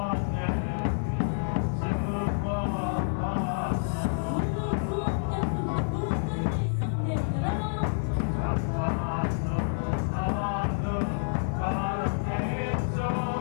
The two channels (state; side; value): silent; right; digital silence